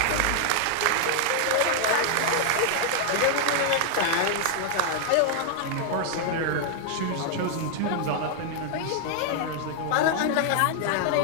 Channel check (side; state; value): both; different; correlation 0.00